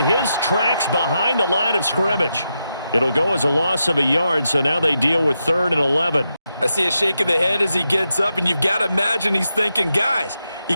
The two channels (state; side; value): inverted; both; correlation -0.86